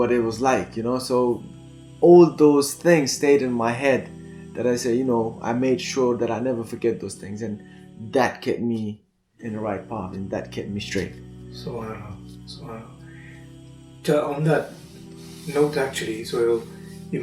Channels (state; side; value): identical; both; correlation 1.00